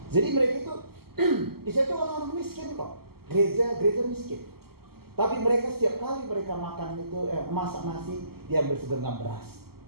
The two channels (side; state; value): left; late; 0.95 ms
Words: Jadi mereka itu di situ orang-orang miskin kok. Gereja miskin. Tapi mereka setiap kali mereka makan itu masak nasi, diambil segenggam beras,